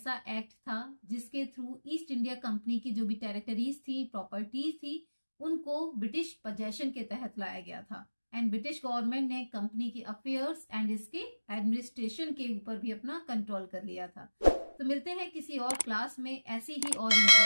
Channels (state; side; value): inverted; both; correlation -1.00